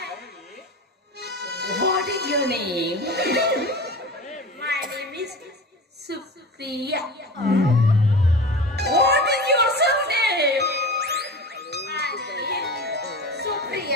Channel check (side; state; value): both; normal; correlation 0.32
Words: what is your name? My name is Supriya. What is your surname? My name